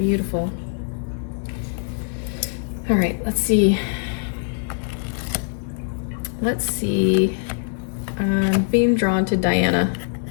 All right, let's see. I'm being drawn to Diana.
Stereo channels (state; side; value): silent; right; digital silence